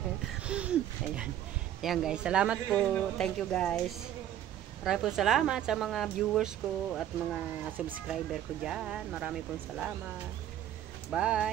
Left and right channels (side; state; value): left; quieter; 11.3 dB